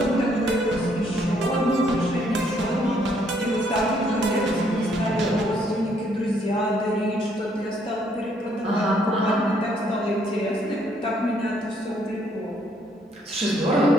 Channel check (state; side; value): normal; both; correlation 0.68